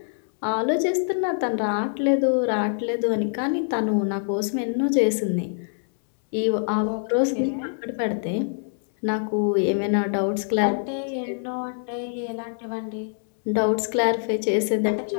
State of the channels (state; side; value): silent; right; 62 dB below the other